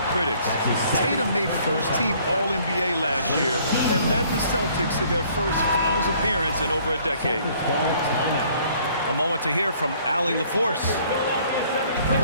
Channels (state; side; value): inverted; both; correlation -0.59